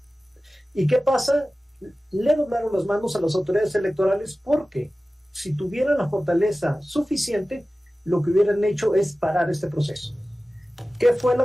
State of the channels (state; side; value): normal; both; correlation 0.96